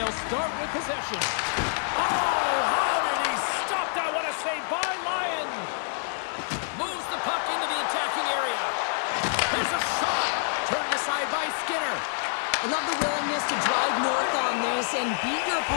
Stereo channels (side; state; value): right; silent; 60 dB below the other